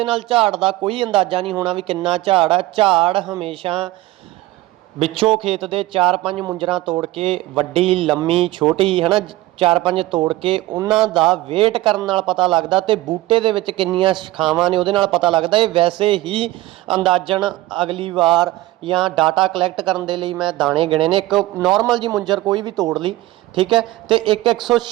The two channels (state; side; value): quieter; left; 17.6 dB